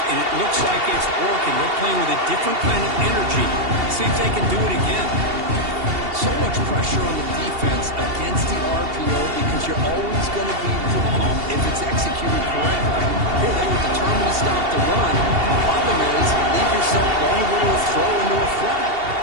and it looks like it's working. They're playing with a different kind of energy. See if they can do it again. So much pressure on the defense against the RPO because you're always going to be wrong if it's executed correctly. Here they were determined to stop the run. The problem is, leave yourself vulnerable to a throw into a flat.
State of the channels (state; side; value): late; left; 2.7 ms